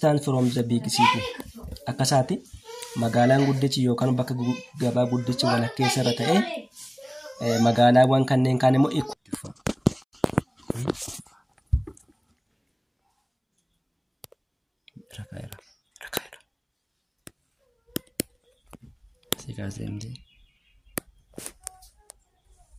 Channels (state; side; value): identical; both; correlation 1.00